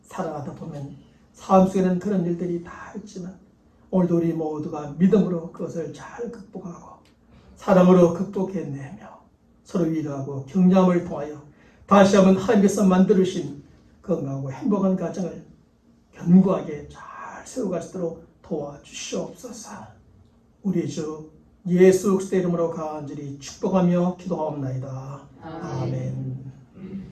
살아가다 보면 삶 속에는 그런 일들이 다 있지만 오늘도 우리 모두가 믿음으로 그것을 잘 극복하고 사랑으로 극복해내며 서로 위로하고 격려함을 통하여 다시 한번 하나님께서 만들으신 건강하고 행복한 가정을 견고하게 잘 세워갈 수 있도록 도와주시옵소서. 우리 주 예수 그리스도의 이름으로 간절히 축복하며 기도하옵나이다. 아멘.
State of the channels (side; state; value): both; identical; correlation 1.00